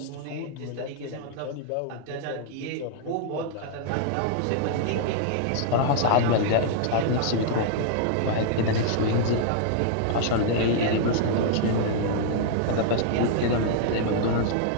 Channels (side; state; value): both; different; correlation -0.01